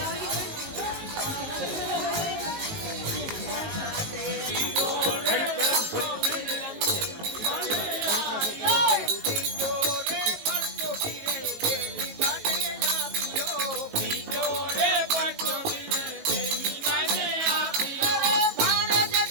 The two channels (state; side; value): late; left; 19 ms